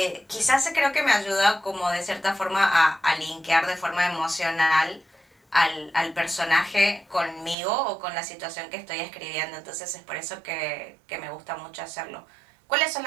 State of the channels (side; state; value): left; drops out; at 7.6 s